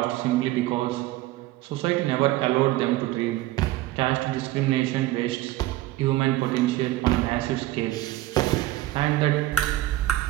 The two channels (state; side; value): quieter; left; 16.6 dB